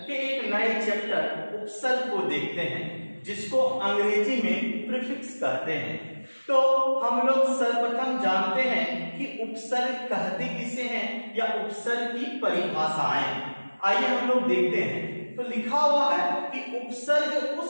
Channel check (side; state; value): both; inverted; correlation -1.00